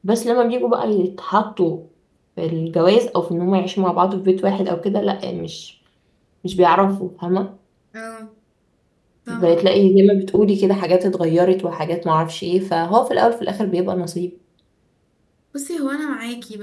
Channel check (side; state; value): both; identical; correlation 1.00